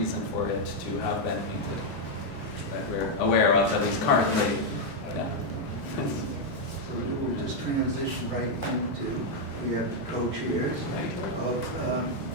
for it to have been painted that we're aware of, at least currently. Yeah. So we'll just transition right into, we have co-chairs of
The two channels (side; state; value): right; late; 2.1 ms